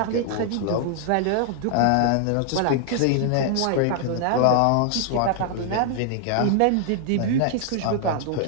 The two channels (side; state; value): both; different; correlation 0.00